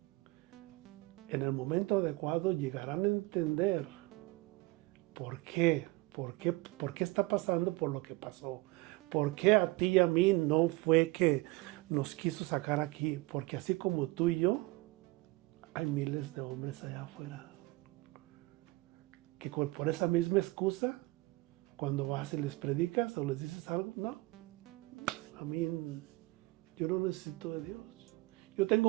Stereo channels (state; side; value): quieter; left; 21.8 dB